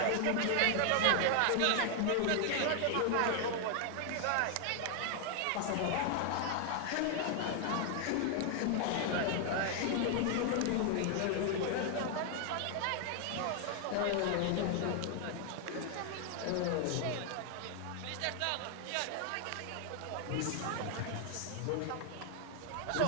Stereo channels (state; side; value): different; both; correlation 0.00